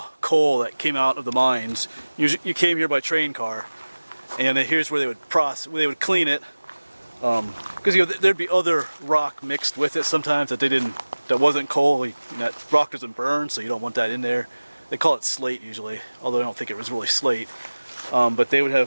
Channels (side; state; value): both; inverted; correlation -1.00